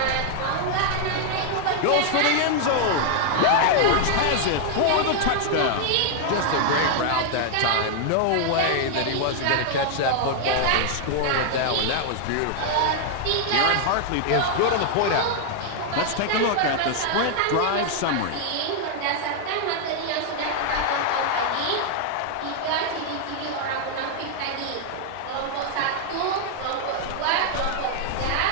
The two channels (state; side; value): different; both; correlation 0.00